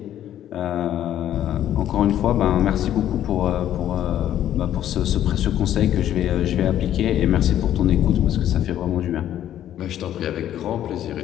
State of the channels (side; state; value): right; quieter; 11.5 dB